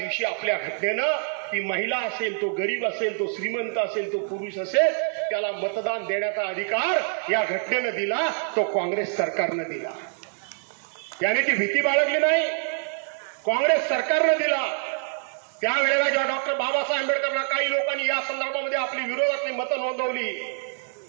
आपल्या घटनेनं ती महिला असेल, तो गरीब असेल, तो श्रीमंत असेल, तो पुरुष असेल, त्याला मतदान देण्याचा अधिकार या घटनेनं दिला. तो काँग्रेस सरकारनं दिला. त्याने ती भीती बाळगली नाही, काँग्रेस सरकारनं दिला. त्यावेळेला जेव्हा डॉक्टर बाबासाहेब आंबेडकरांना काही लोकांनी या संदर्भामध्ये आपली विरोधातली मतं नोंदवली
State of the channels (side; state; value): left; silent; 61 dB below the other